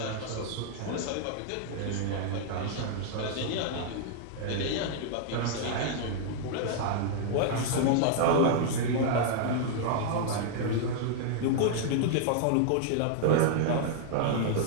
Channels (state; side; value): different; both; correlation -0.01